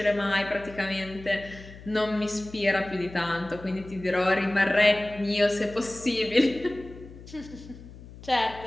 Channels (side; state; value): left; noise; hum, 17 dB below the sound